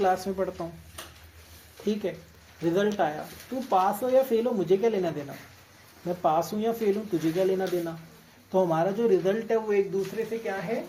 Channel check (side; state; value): both; identical; correlation 1.00